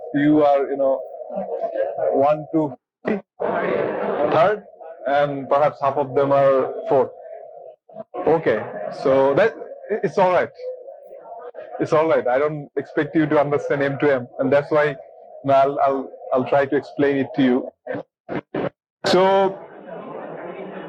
you are, 1 to 3rd, and perhaps half of them are 4th. Okay, so that it's all right. It's all right. I don't expect you to understand M2M, and that's why I'll try to explain it to you. So,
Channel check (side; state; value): both; identical; correlation 1.00